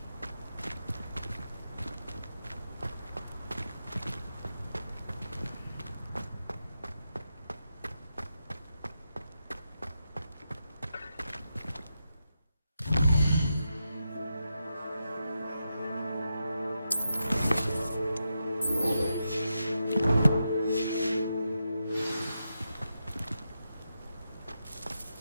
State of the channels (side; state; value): both; inverted; correlation -0.86